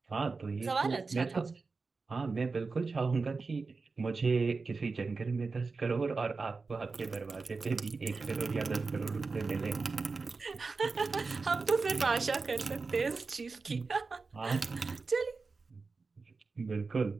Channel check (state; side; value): quieter; left; 4.3 dB